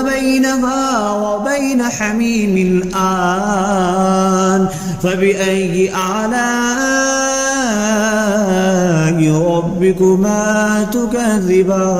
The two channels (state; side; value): identical; both; correlation 1.00